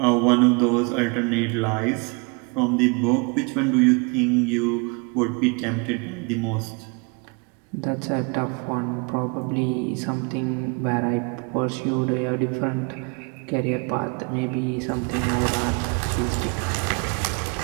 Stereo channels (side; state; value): left; quieter; 32.1 dB